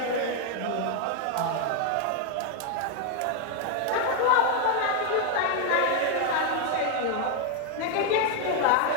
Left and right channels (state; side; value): different; both; correlation 0.01